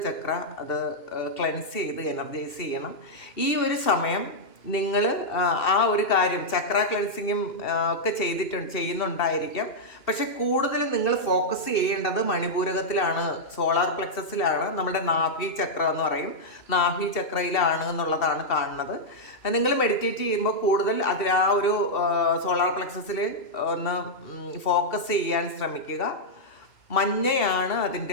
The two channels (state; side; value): late; right; 2.7 ms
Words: ചക്ര അത് ക്ലെൻസ് ചെയ്ത് എനർജൈസ് ചെയ്യണം. ഈ ഒരു സമയം നിങ്ങൾ ആ ഒരു കാര്യം ചക്ര ക്ലെൻസിങ്ങും ഒക്കെ ചെയ്യുന്നുണ്ടായിരിക്കാം. പക്ഷെ കൂടുതലും നിങ്ങൾ ഫോക്കസ് ചെയ്യേണ്ടത് മണിപൂരകത്തിലാണ്, സോളാർ പ്ലെക്സസിലാണ്, നമ്മുടെ നാഭി ചക്ര എന്ന് പറയും, നാഭി ചക്രയിലാണ് എന്നുള്ളതാണ് കാണുന്നത്. നിങ്ങൾ മെഡിറ്റേറ്റ് ചെയ്യുമ്പോൾ കൂടുതൽ അതിൽ ആ ഒരു സോളാർ പ്ലെക്സസിൽ ഒന്ന് ഫോക്കസ് ചെയ്യാൻ ശ്രമിക്കുക. മഞ്ഞയാണ്